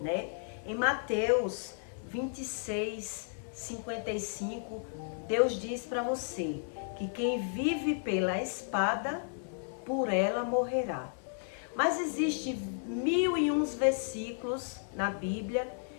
né? Em Mateus 26, 55, Deus diz para você que quem vive pela espada, por ela morrerá. Mas existe 1001 versículos na Bíblia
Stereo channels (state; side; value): silent; right; 56 dB below the other